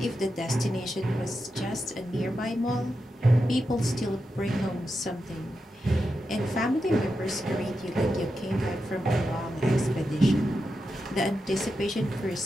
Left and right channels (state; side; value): normal; both; correlation 0.88